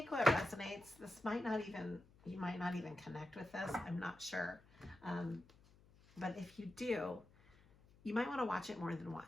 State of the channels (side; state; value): left; noise; hum, 26 dB below the sound